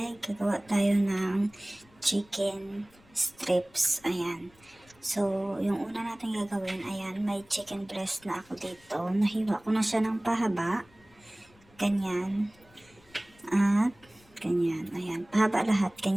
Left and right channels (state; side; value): noise; left; rumble, 29 dB below the sound